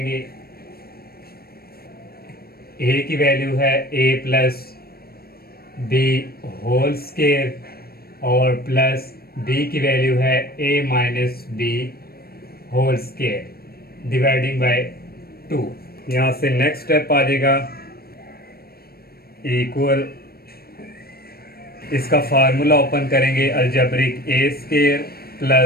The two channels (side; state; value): right; late; 0.44 ms